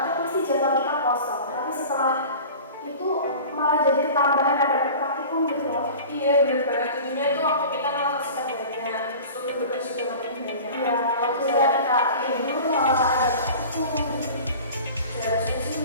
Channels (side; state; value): both; inverted; correlation -0.39